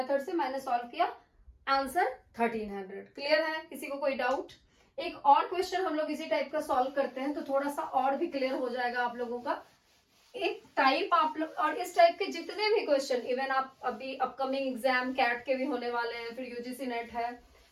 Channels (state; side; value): identical; both; correlation 1.00